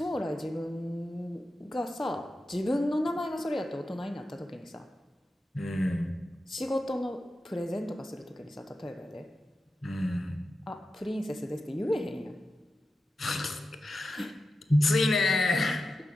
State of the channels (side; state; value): both; normal; correlation 0.91